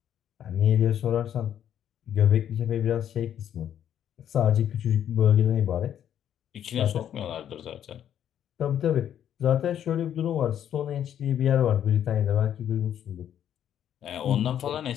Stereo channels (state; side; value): quieter; right; 10.0 dB